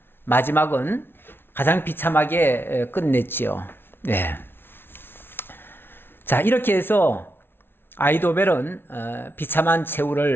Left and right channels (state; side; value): late; right; 0.11 ms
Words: 마지막은 가장 비참하게 끝냈지요. 네. 자, 이렇게 해서 아히도벨은 비참한